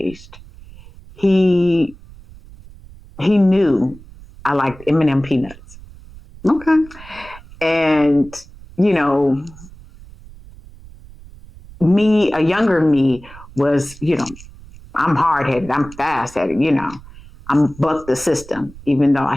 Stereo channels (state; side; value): noise; right; rumble, 20 dB below the sound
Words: He knew I liked M&M peanuts. Okay. And, a younger me was, I'm hard-headed, I'm fast-headed, I'm buck the system, even though